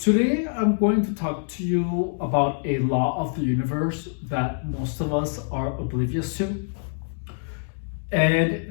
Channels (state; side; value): silent; right; digital silence